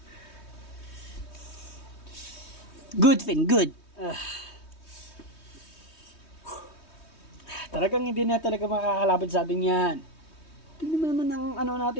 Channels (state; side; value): late; right; 3.2 ms